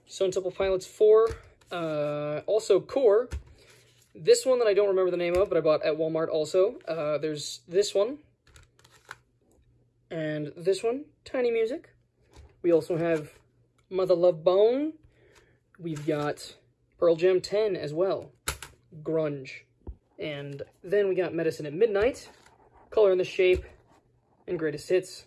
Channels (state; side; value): identical; both; correlation 1.00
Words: Stone Temple Pilots 4, also Core. This one that I don't remember the name of, but I bought at Walmart also. There's this one, and this one, Tiny Music. We also have Mother Love Bone. We've got Pearl Jam 10 as well, grunge. And then we got Medicine at Midnight, Color and the Shape, and Greatest Hits,